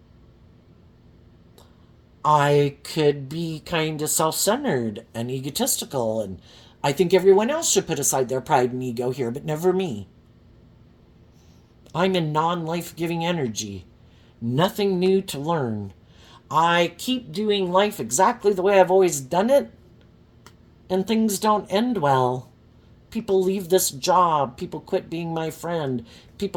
I could be kind of self-centered and egotistical, and I think everyone else should put aside their pride and ego here, but never me. I'm in non-life-giving energy. Nothing new to learn. I keep doing life exactly the way I've always done it, and things don't end well. People leave this job. People quit being my friend.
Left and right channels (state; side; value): identical; both; correlation 1.00